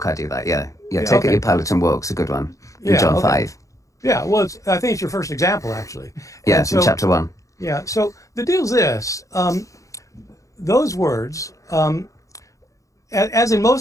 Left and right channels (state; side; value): late; right; 0.16 ms